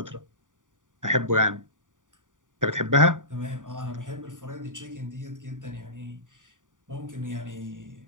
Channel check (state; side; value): late; left; 0.88 ms